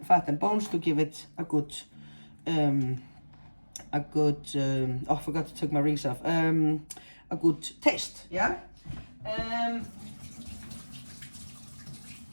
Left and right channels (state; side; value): inverted; both; correlation -1.00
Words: and bones to give it a good, oh, I forgot to take my rings off. A good taste, yeah?